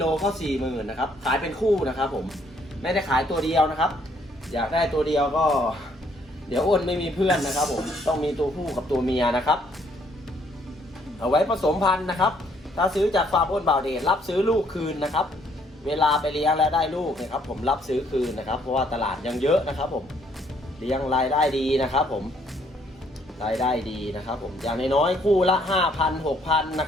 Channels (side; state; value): both; normal; correlation 0.67